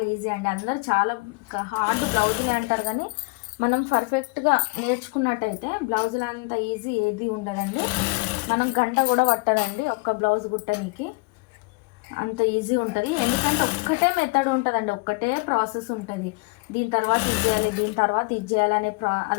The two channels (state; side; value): quieter; right; 29.2 dB